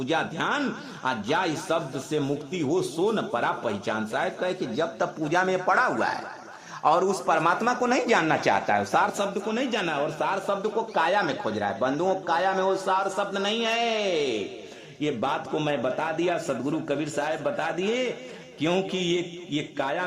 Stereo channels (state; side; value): identical; both; correlation 1.00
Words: ध्यान, जाय शब्द से मुक्ति हो सो न परा पहचान। साहेब कहे कि जब तक पूजा में पड़ा हुआ है और उस परमात्मा को नहीं जानना चाहता है, सार शब्द को नहीं जाना, और सार शब्द को काया में खोज रहा है। बंधुओं, काया में वो सार शब्द नहीं है। ये बात को मैं बता दिया, सदगुरु कबीर साहब बता दिए, क्योंकि ये